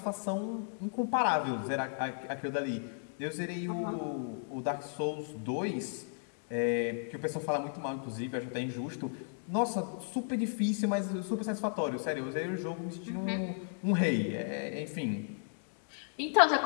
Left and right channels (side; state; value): right; silent; digital silence